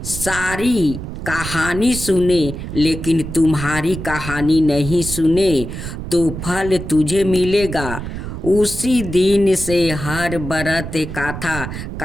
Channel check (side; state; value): right; noise; rumble, 8 dB below the sound